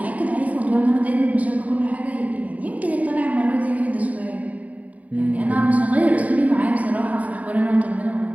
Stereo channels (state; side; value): late; left; 0.071 ms